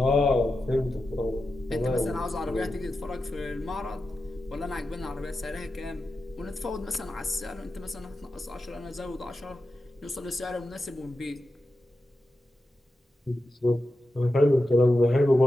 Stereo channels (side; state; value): both; normal; correlation 0.90